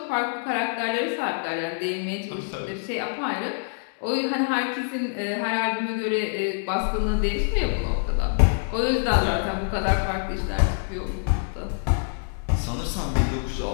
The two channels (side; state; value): right; silent; digital silence